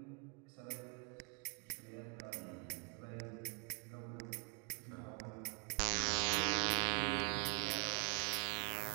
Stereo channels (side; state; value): left; quieter; 39.3 dB